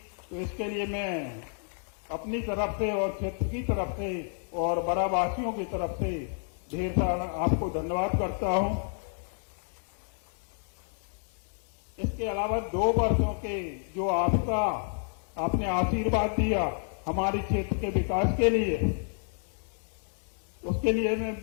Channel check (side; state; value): right; silent; 58 dB below the other